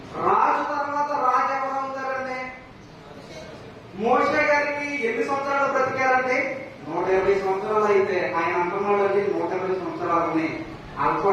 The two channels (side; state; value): both; identical; correlation 1.00